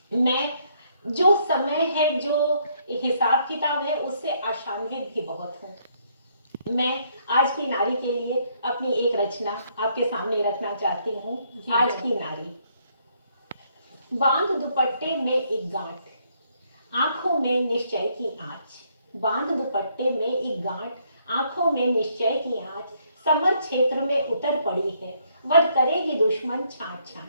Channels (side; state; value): both; inverted; correlation -0.70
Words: मैं, जो समय है, जो हिसाब किताब है, उससे आशान्वित भी बहुत हूँ। मैं आज की नारी के लिए अपनी एक रचना आपके सामने रखना चाहती हूँ। आज की नारी। बांध दुपट्टे में एक गांठ, आंखों में निश्चय की आंच। बांध दुपट्टे में एक गांठ, आंखों में निश्चय की आंच। समर क्षेत्र में उतर पड़ी है, वध करेगी दुश्मन छांट